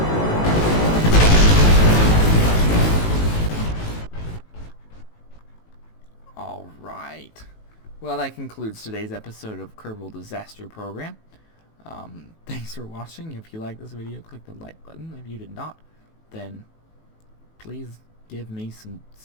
Alright. Well, that concludes today's episode of Kerbal Disaster Program. Thanks for watching. If you liked this video, click the like button. If you did not, then please give me some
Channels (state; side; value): late; right; 18 ms